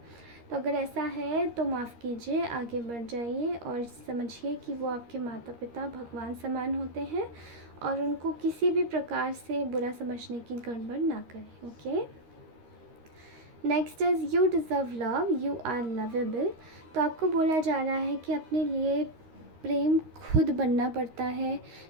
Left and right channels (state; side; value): late; left; 13 ms